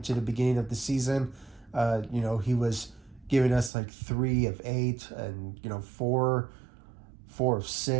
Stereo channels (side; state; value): left; drops out; at 3.7 s